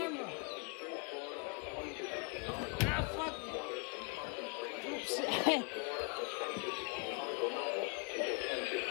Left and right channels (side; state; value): right; quieter; 33.8 dB